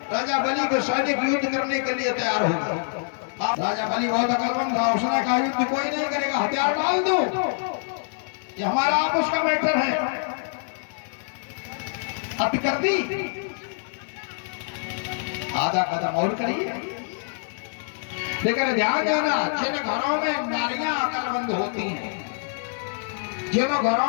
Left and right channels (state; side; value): silent; right; digital silence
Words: राजा बलि के सैनिक युद्ध करने के लिए तैयार हो गए। राजा बलि बहुत अकलमंद था, उसने कहा युद्ध कोई नहीं करेगा, हथियार डाल दो, ये हमारा आपस का मैटर है। अत कर दी, आधा कदम और करिए। लेकिन ध्यान देना, जिन घरों में नारियां अकलमंद होती हैं, जिन